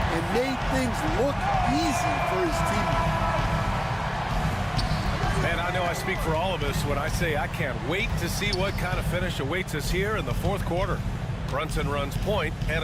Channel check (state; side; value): identical; both; correlation 1.00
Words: and made things look easy for his teammates. And I know I speak for all of us when I say I can't wait to see what kind of finish awaits us here in the fourth quarter. Brunson runs point, and